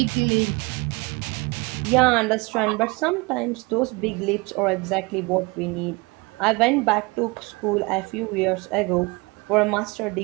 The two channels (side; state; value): left; quieter; 26.2 dB